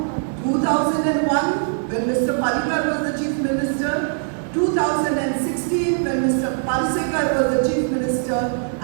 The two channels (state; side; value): silent; left; 65 dB below the other